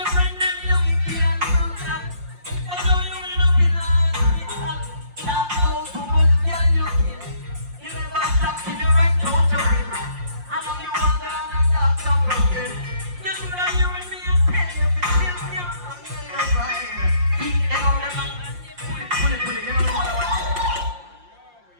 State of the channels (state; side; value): late; left; 5.7 ms